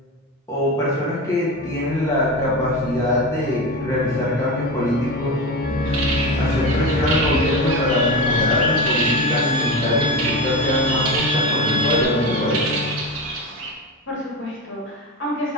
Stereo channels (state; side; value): normal; both; correlation 0.22